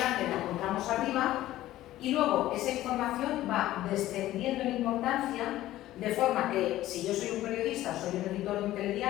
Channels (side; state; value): right; quieter; 14.9 dB